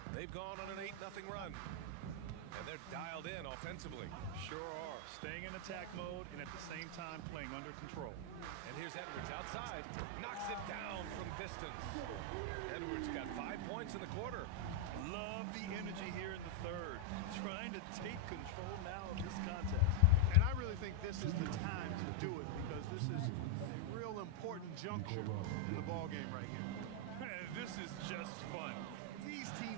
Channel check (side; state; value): both; different; correlation 0.00